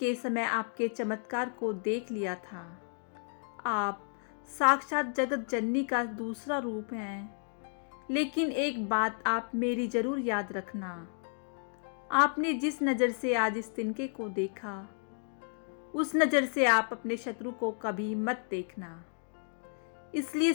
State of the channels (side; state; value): right; silent; 56 dB below the other